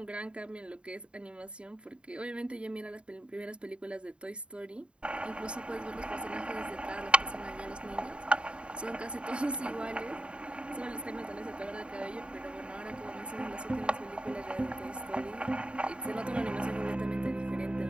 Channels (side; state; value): left; late; 0.055 ms